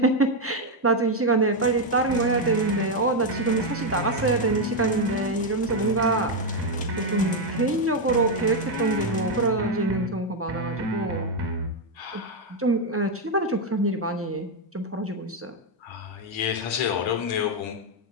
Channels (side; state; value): both; normal; correlation 0.03